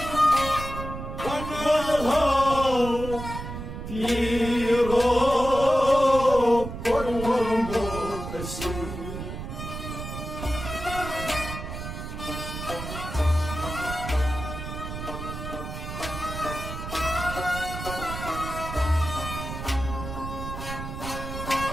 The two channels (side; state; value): right; noise; rumble, 8 dB below the sound